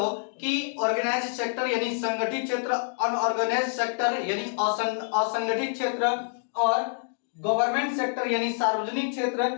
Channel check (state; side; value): silent; right; digital silence